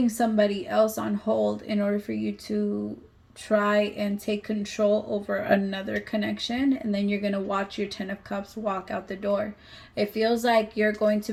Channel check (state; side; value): identical; both; correlation 1.00